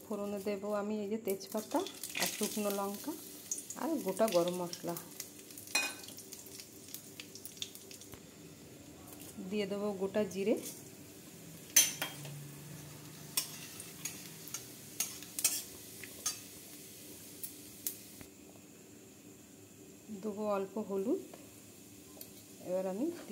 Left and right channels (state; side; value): identical; both; correlation 1.00